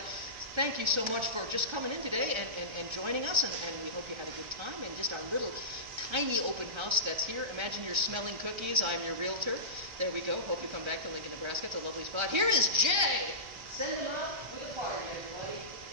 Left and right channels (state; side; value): late; left; 1.3 ms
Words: Thank you so much for just coming in today and joining us, and we hope you had a good time in just our little tiny open house that's here. Imagine you're smelling cookies. I'm your realtor. There we go. Hope you come back to Lincoln, Nebraska. It's a lovely spot. Here is Jay! Send them up with a party, everybody.